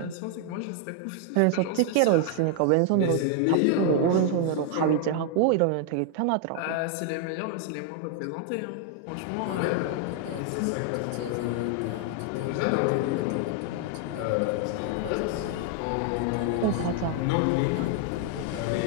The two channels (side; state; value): both; different; correlation 0.00